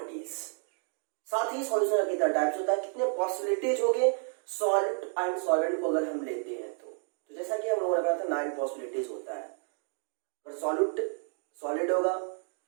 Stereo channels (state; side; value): silent; left; 57 dB below the other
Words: साथ ही सॉल्यूशन का कितना टाइप्स होता है, कितने पॉसिबिलिटीज हो गए सॉल्ट एंड सॉल्वेंट को अगर हम लेते हैं तो जैसा कि हम लोगों ने कहा था 9 पॉसिबिलिटीज होता है। अगर सॉलिड होगा,